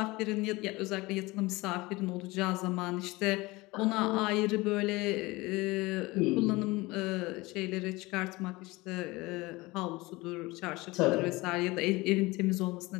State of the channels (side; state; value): right; quieter; 21.8 dB